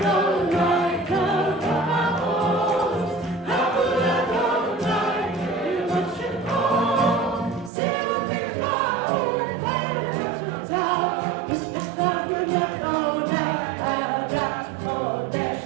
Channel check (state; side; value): drops out; left; at 7.7 s